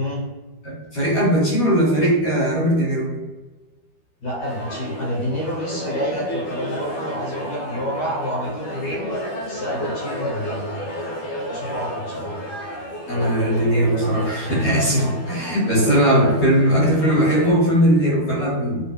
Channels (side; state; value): right; late; 12 ms